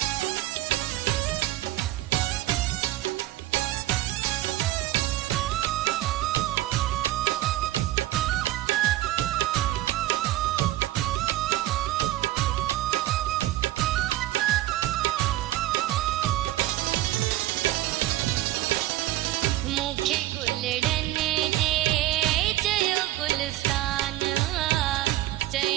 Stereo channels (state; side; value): quieter; left; 15.4 dB